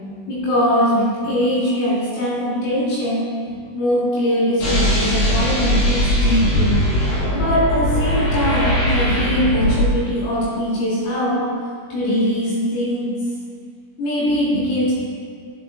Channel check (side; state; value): right; late; 21 ms